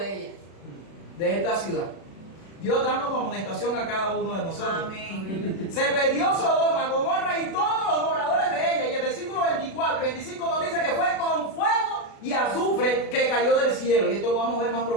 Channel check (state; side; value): late; right; 36 ms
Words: ella, de esta ciudad. Dios dándonos amonestación a cada uno de nosotros. Amén. Se perdió Sodoma, Gomorra y todos los moradores de ella. Y el versículo 24 y 25 nos dice que fue con fuego y azufre que cayó del cielo. Y esto lo vamos a ver más